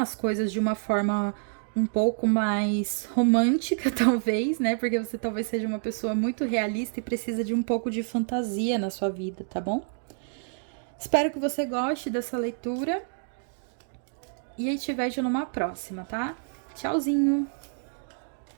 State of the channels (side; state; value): left; silent; 59 dB below the other